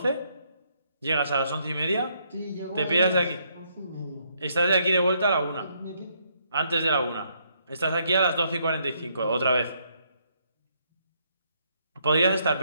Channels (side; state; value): both; inverted; correlation -0.73